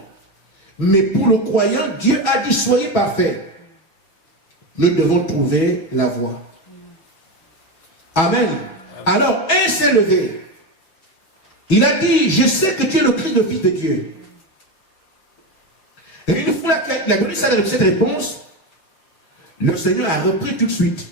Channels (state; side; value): late; right; 6.1 ms